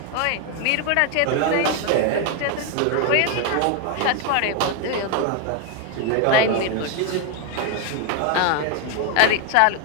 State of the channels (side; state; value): both; different; correlation 0.01